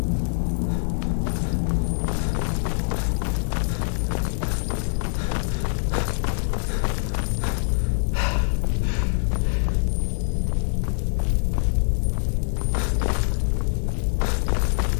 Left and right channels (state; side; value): silent; right; digital silence